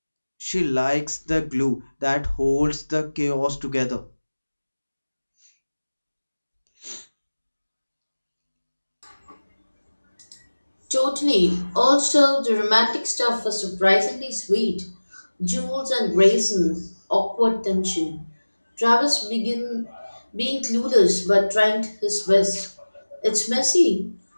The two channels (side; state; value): both; inverted; correlation -1.00